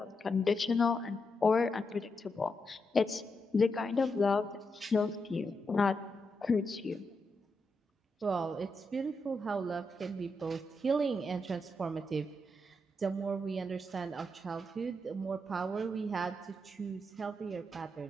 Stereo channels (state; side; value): normal; both; correlation 0.84